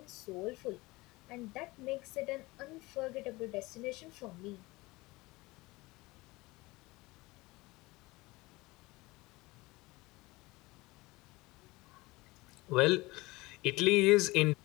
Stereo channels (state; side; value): quieter; right; 21.7 dB